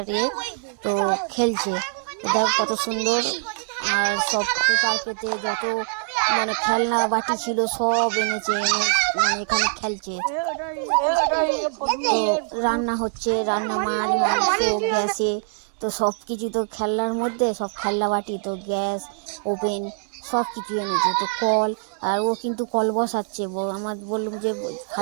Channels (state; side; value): silent; left; digital silence